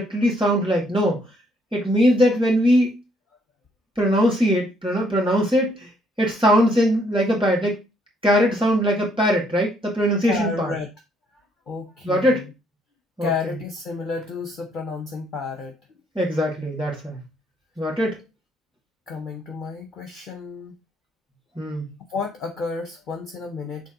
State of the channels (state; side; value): normal; both; correlation 0.69